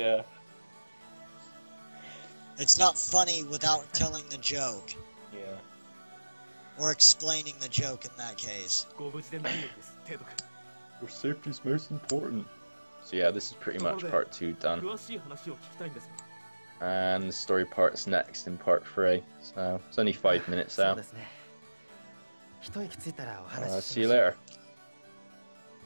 It's not funny without telling the joke. Yeah. Or explaining the joke in that case. Your safety's most important. So yeah, this is pretty much part 2 done. And the story part's next in part 3. So it's only 5 minutes out. See you later.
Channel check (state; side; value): inverted; both; correlation -1.00